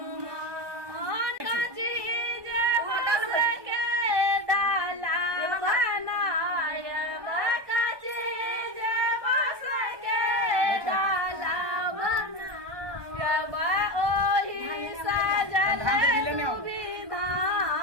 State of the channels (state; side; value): late; left; 1.2 ms